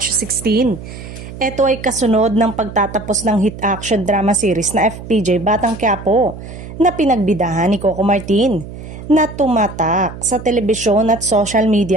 16. Ito ay kasunod ng pagtatapos ng hit action drama series na FPJ Batang Quiapo na pinagbidahan ni Coco Martin na tumatak sa telebisyon at social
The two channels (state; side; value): noise; right; hum, 13 dB below the sound